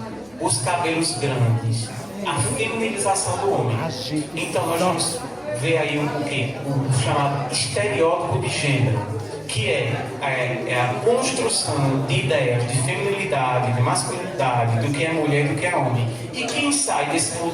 os cabelos grandes, a feminilização do homem. Então nós vamos ver aí o chamado estereótipo de gênero, que é a construção de ideias de feminilidade, de masculinidade, do que é mulher e do que é homem. E quem sai desse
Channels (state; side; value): noise; right; hum, 28 dB below the sound